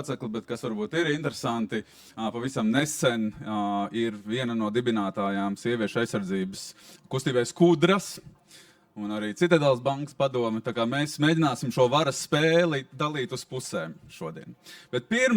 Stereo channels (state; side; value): identical; both; correlation 1.00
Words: bet kas varbūt ir interesanti, pavisam nesen ir viena no dibinātājām sieviešu aizsardzības kustībai Skudras un arī Citadelas bankas padome. Tā kā mēs mēģināsim šo varas spēli dalīt uz pusēm šodien. Bet